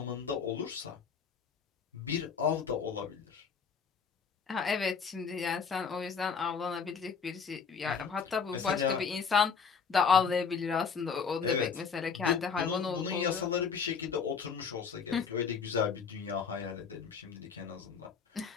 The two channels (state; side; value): quieter; right; 6.0 dB